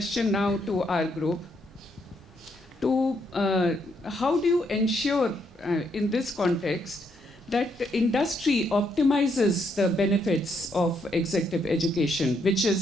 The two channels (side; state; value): both; normal; correlation 0.75